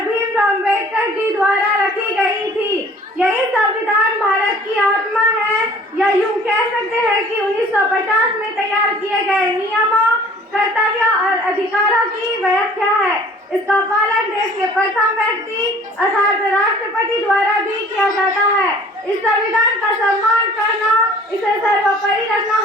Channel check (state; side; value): normal; both; correlation 0.51